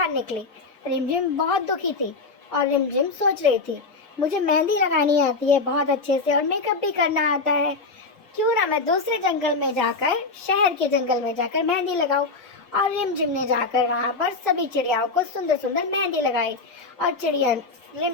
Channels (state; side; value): quieter; right; 3.8 dB